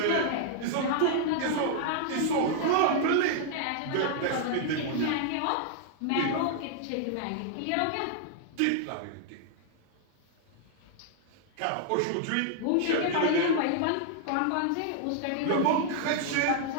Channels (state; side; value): different; both; correlation -0.01